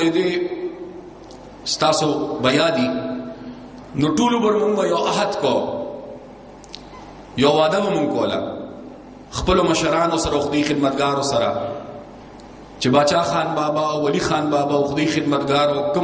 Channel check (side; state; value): both; identical; correlation 1.00